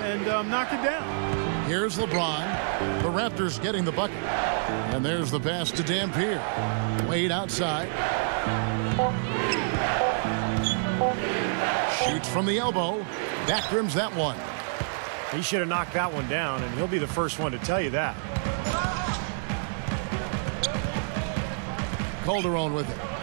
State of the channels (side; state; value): left; silent; digital silence